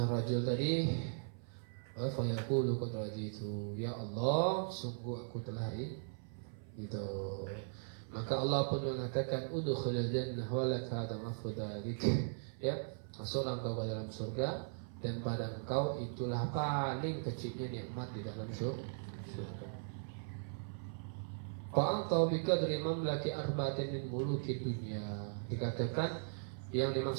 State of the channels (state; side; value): silent; left; 52 dB below the other